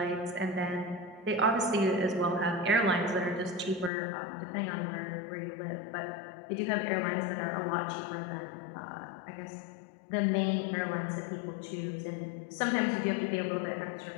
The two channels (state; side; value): drops out; right; at 3.9 s